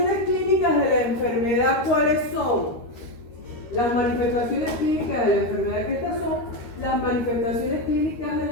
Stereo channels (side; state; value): right; late; 13 ms